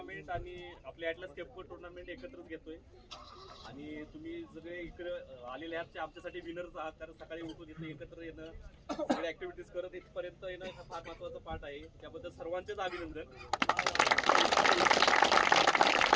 आणि आपले ॲटलस केपको टुर्नामेंट एकत्रच घेतोय आणि तुम्ही सगळे इकडे आलेले आहात ते आमच्यासाठी विनर्स आहात. कारण सकाळी उठून इथे एकत्र येणं, सगळे ऍक्टिव्हिटीज करत इथपर्यंत येणं हा फार महत्वाचा पार्ट आहे. त्याबद्दल सर्वांचेच अभिनंदन.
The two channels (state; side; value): identical; both; correlation 1.00